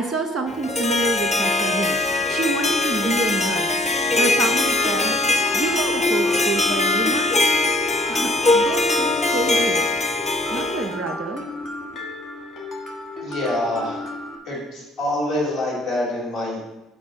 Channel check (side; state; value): both; normal; correlation 0.58